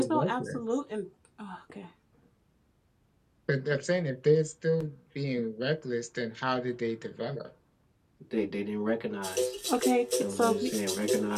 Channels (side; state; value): both; identical; correlation 1.00